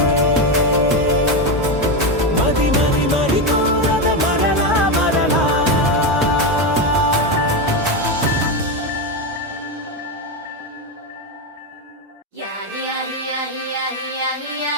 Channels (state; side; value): normal; both; correlation 0.11